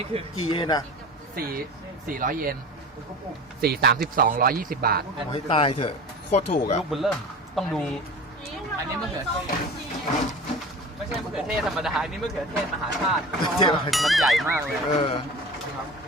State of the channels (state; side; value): normal; both; correlation 0.35